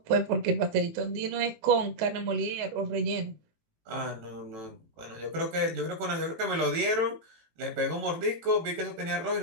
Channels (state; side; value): late; left; 18 ms